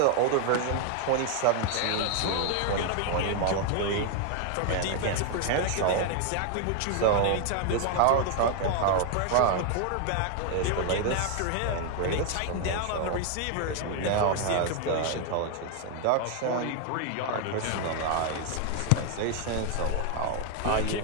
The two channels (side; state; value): both; different; correlation 0.00